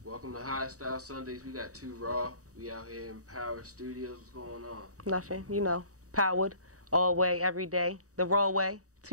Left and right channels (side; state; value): left; late; 0.66 ms